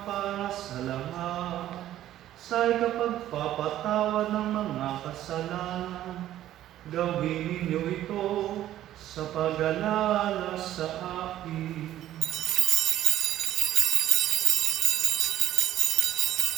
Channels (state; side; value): quieter; left; 12.9 dB